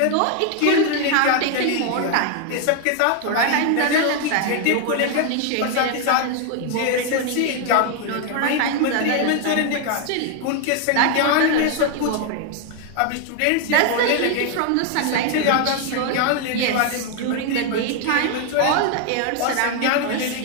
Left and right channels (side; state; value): both; different; correlation 0.00